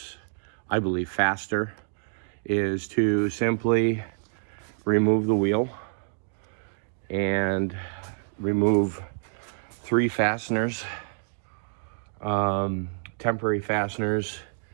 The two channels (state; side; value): silent; left; digital silence